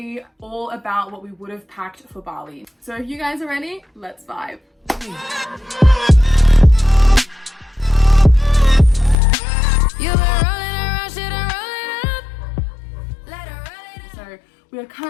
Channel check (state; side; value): drops out; right; at 9.2 s